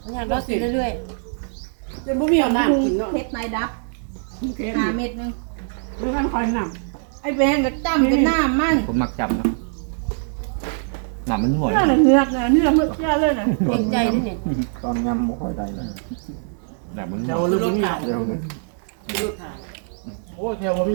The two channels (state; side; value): silent; left; 64 dB below the other